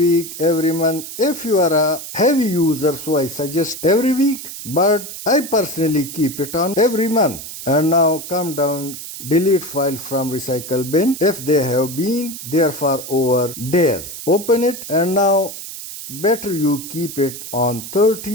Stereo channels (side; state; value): right; noise; hiss, 10 dB below the sound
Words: every month. If you are a heavy user, so I suggest every week, but I personally keep it on every month. And now come down, delete file from recycle bin if they have been there for over days. Open it and now better you keep it on